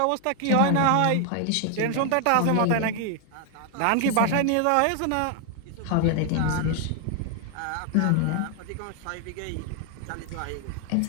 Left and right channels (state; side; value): different; both; correlation 0.00